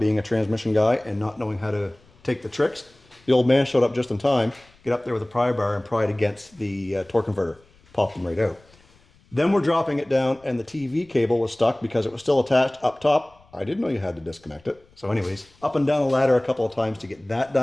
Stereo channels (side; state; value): left; noise; rumble, 30 dB below the sound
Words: a transmission guy and not knowing how to take the tricks, the old man showed up just in time, get up there with a pry bar and pry it against the torque converter, popped them right out. Then we're dropping it down, and the TV cable was stuck because it was still attached up top. I didn't know you had to disconnect it. So anyways, up and down the ladder a couple of times to get that